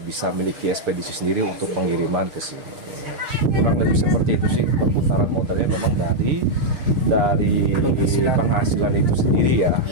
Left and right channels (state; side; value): late; left; 6.5 ms